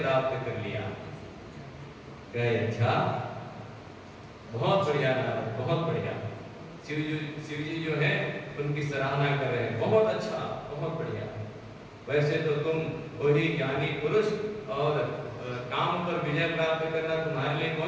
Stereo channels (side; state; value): both; identical; correlation 1.00